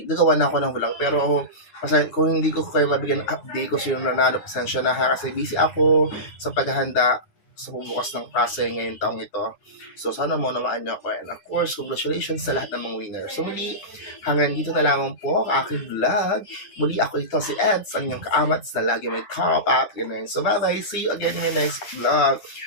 gagawa na ako ng vlog. Pero kasi kung hindi ko kayo mabigyan ng update kung sino nanalo, pasensya na ha, kasi busy ako sa paghahanda sa bubukas ng klase ngayong taong ito. So sana mo namaan niyo ako. And of course, congratulations sa lahat ng mga winners. So muli, hanggang dito na lamang po ang aking vlog. Muli ako ito si Eds, ang inyong kaamats na lagi may top up. So bye bye, see you again in my next vlog.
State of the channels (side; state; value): right; late; 9.8 ms